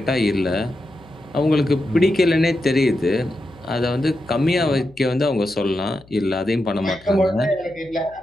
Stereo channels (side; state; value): left; noise; hum, 26 dB below the sound